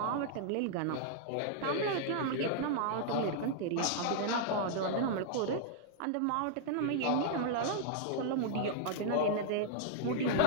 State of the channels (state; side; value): different; both; correlation -0.01